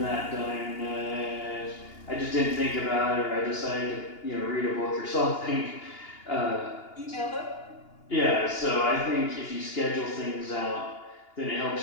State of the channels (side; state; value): right; late; 2.8 ms